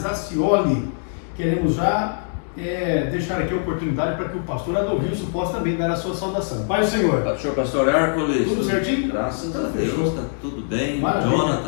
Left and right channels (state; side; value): silent; right; 64 dB below the other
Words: Acioli. Queremos já deixar aqui a oportunidade para que o pastor Adolvilson possa também dar a sua saudação. Pai do Senhor. Pastor Hércules. Tudo certinho? Graças a Deus, está tudo bem. Maravilha.